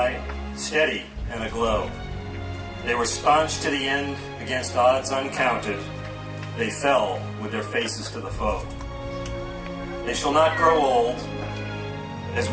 steady and aglow. They were staunch to the end against odds uncounted. They fell with their faces to the foe. They shall not grow old, as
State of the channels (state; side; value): identical; both; correlation 1.00